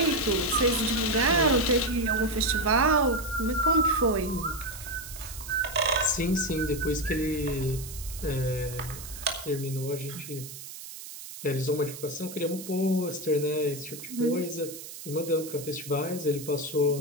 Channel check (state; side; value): noise; right; hiss, 12 dB below the sound